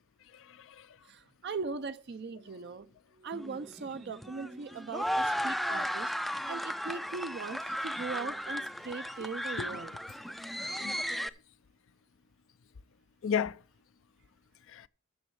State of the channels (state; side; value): normal; both; correlation 0.62